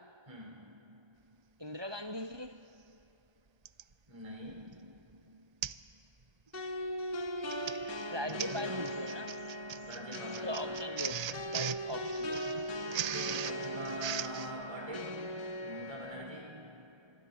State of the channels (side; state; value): left; late; 1.3 ms